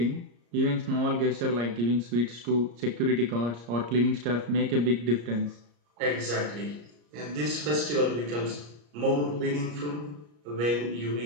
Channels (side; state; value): left; late; 34 ms